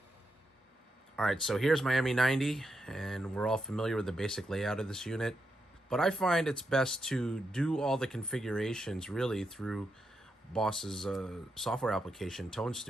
All right, so here's my ME-90, and we're all familiar with the basic layout of this unit. But I find it's best to do all the configurations really through Boss's software application, Tone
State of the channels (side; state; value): both; normal; correlation 0.84